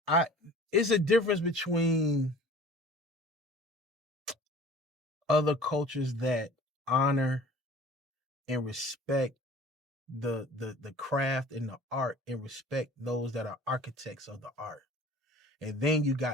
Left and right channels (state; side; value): normal; both; correlation 0.46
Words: I It's a difference between other cultures that honor and respect the craft and the art and respect those that are architects of the art. And then you